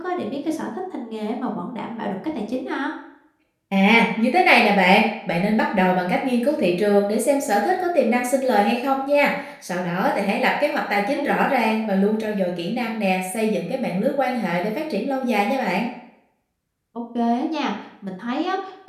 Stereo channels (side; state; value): both; identical; correlation 1.00